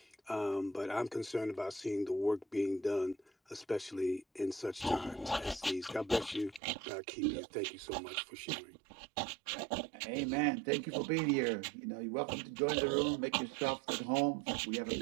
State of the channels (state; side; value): drops out; left; at 6.6 s